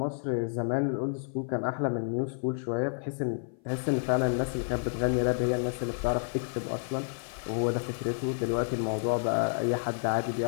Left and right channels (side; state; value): right; silent; 55 dB below the other